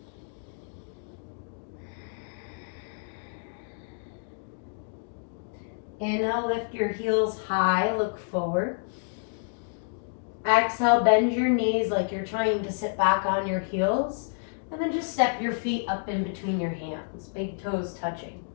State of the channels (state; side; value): silent; right; digital silence